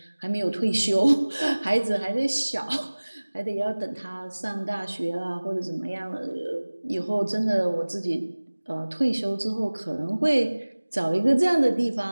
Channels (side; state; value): both; inverted; correlation -1.00